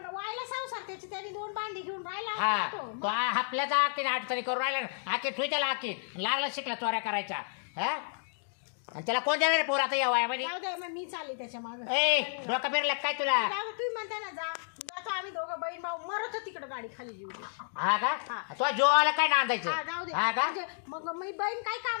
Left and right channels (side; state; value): right; silent; digital silence